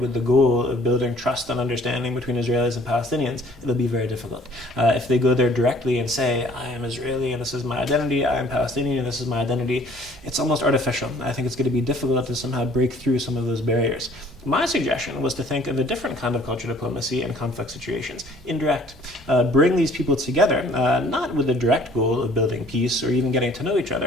the goal of building trust and understanding between Israelis and Palestinians, it'll be very difficult. If they go there directly and say, I am Israeli and this is my identity, I am Palestinian and this is my identity, it's almost artificial. I think it's going to be difficult to somehow break through some of those barriers. My suggestion was to think of a different kind of cultural diplomacy in conflict situations, indirect. Bring these people together, not with the direct goal of building peace or even getting to know each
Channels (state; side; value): normal; both; correlation 0.56